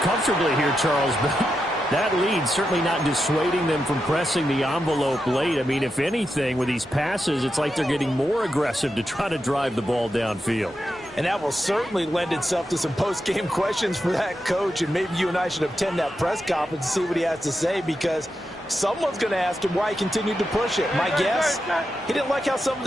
comfortably here, Charles, but that lead certainly not dissuading them from pressing the envelope late. I mean, if anything, with these passes, it's like they're getting more aggressive to try to drive the ball downfield. And that will certainly lend itself to some post-game questions for that coach, and maybe you and I should attend that press conference and see what he has to say, because someone's going to ask him why he continued to push it. My guess, he didn't like how some of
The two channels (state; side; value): normal; both; correlation 0.87